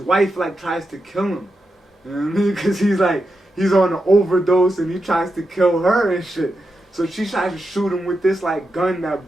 like tries to kill him. You know what I mean? Because he's like, he's on an overdose and he tries to kill her and shit. So she tries to shoot him with this like gun that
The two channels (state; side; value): normal; both; correlation 0.87